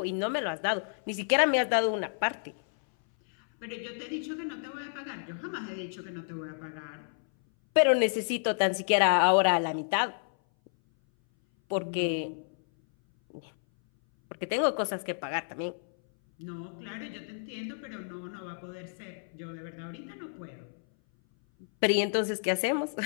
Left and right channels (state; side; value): silent; right; 57 dB below the other